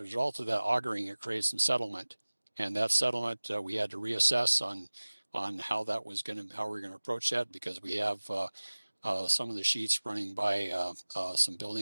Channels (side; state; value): both; inverted; correlation -1.00